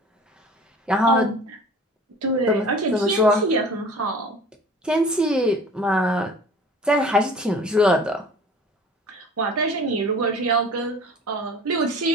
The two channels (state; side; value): normal; both; correlation 0.44